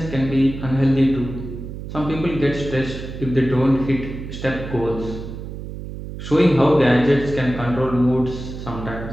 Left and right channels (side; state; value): right; noise; hum, 9 dB below the sound